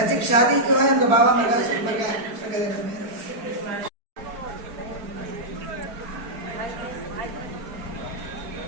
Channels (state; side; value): late; left; 4.7 ms